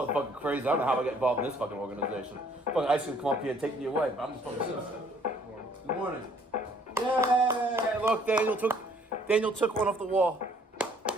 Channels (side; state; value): both; normal; correlation 0.61